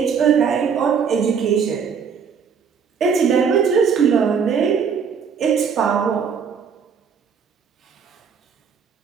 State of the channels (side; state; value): left; quieter; 6.5 dB